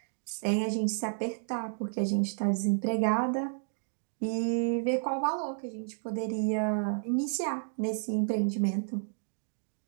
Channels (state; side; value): silent; left; digital silence